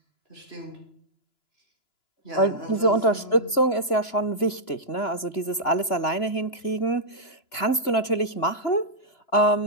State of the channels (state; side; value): late; right; 2.9 ms